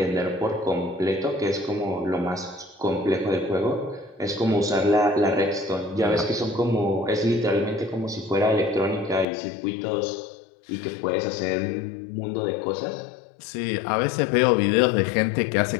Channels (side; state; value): right; drops out; at 9.2 s